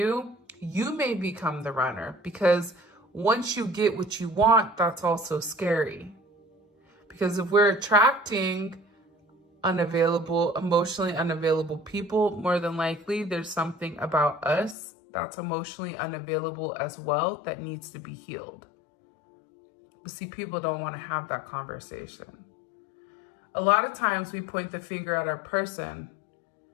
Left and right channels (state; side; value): drops out; right; at 14.8 s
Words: you may become the runner, because once you get what you want, that's also scary. Because if we're attracting unavailable, emotionally unavailable people, more than likely there's something about us that's emotionally unavailable as well that needs to be healed. But see, people don't want to have that conversation. A lot of times we point the finger at our person.